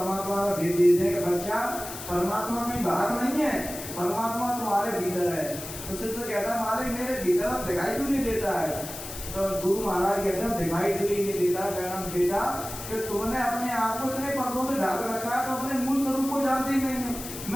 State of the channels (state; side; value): noise; left; hiss, 10 dB below the sound